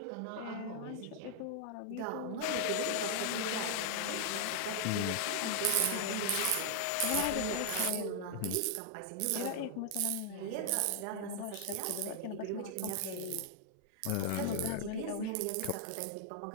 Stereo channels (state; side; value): different; both; correlation 0.00